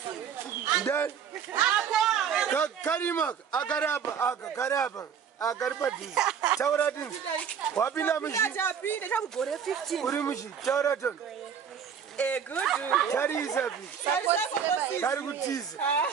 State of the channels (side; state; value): left; quieter; 7.5 dB